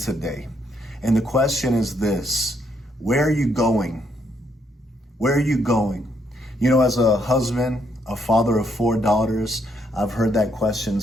And the question is this: where are you going? Where are you going? You know, as a husband, a father of 4 daughters, I've heard that question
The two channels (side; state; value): both; normal; correlation 0.74